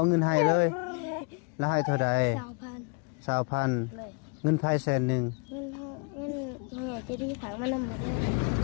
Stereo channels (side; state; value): right; quieter; 31.3 dB